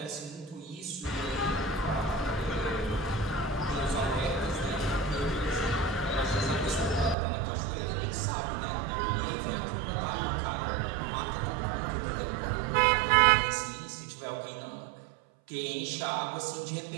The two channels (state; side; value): drops out; left; at 7.2 s